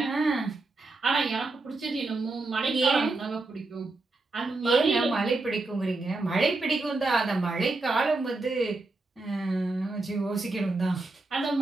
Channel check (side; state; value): left; quieter; 3.3 dB